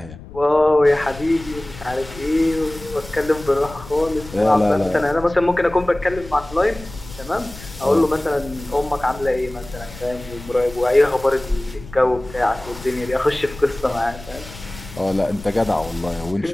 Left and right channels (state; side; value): noise; left; rumble, 16 dB below the sound